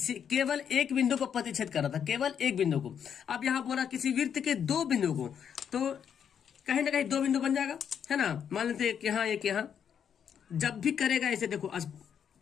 केवल एक बिंदु को प्रतिच्छेद कर रहा था, केवल एक बिंदु को। अब यहाँ बोला किसी विर्त के 2 बिंदु को, तो कहीं ना कहीं 2 बिंदु बन जाएगा, है ना। मान लेते एक यहाँ एक यहाँ, जब भी करेगा ऐसे देखो,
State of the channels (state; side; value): quieter; right; 8.1 dB